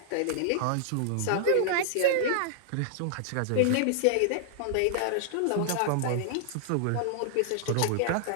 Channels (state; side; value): different; both; correlation -0.01